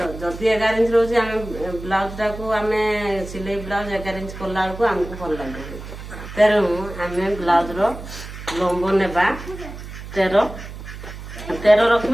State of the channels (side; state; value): right; noise; hum, 12 dB below the sound